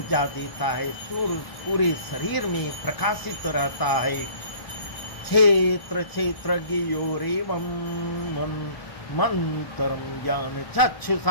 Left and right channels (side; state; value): right; late; 1.0 ms